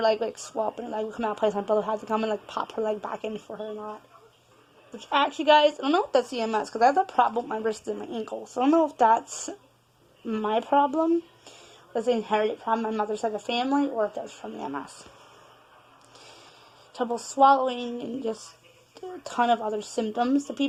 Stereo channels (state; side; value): identical; both; correlation 1.00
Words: leg, swap, and her leg would come out of place. My brother had to come and, pop her leg back in for her and that. Which, actually, guys, I don't know if that's EMS, because I have a problem with my wrist and my ankle, so I don't know if that's my problem, that's an inherited problem my mother's side of the family, or if that's from the MS. Trouble swallowing and just a ton of other symptoms that